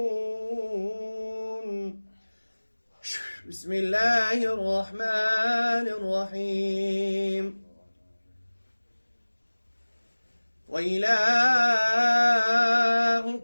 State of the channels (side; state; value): both; inverted; correlation -1.00